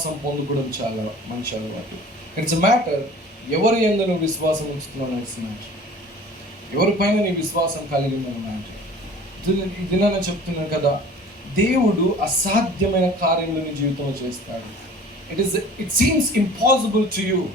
పొందుకోవడం చాలా మంచి అలవాటు. ఇట్స్ ఎ మ్యాటర్ ఎవరి యందు నువ్వు విశ్వాసం ఉంచుతున్నావు. ఇట్స్ మ్యాటర్ ఎవరిపైన నీ విశ్వాసం కలిగిందని మ్యాటర్. ఇది నేను చెప్తున్నాను కదా, దేవుడు అసాధ్యమైన కార్యములు నీ జీవితంలో చేస్తాడు. It seems impossible to you.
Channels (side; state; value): both; normal; correlation 0.45